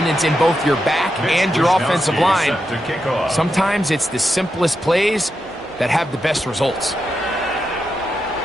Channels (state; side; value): normal; both; correlation 0.86